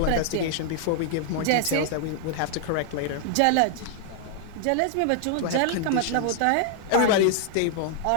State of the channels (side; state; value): both; different; correlation 0.00